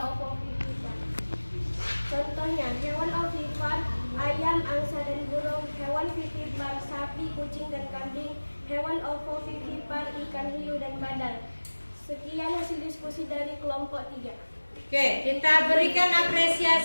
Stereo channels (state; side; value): inverted; both; correlation -1.00